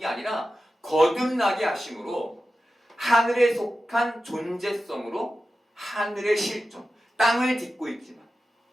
아니라 거듭나게 하심으로 하늘에 속한 존재성으로 하늘의 실존, 땅을 딛고 있지만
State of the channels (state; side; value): normal; both; correlation 0.93